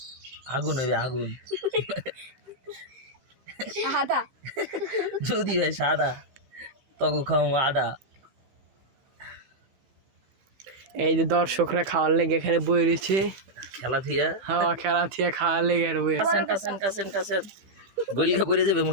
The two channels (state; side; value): late; left; 15 ms